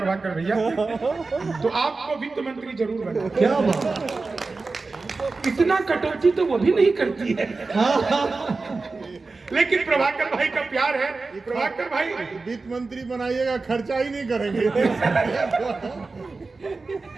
भैया, तो आपको वित्त मंत्री जरूर बना। क्या बात। इतना कटौती तो वो भी नहीं करती है। लेकिन प्रभाकर भाई का प्यार है। प्रभाकर भाई वित्त मंत्री बनाइएगा, खर्चा ही नहीं करेंगे।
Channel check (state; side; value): quieter; left; 3.9 dB